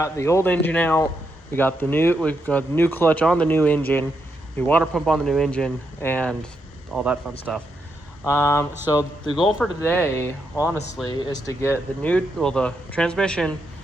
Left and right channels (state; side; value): normal; both; correlation 0.81